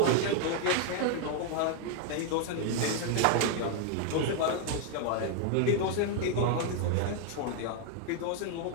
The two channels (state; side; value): different; both; correlation 0.00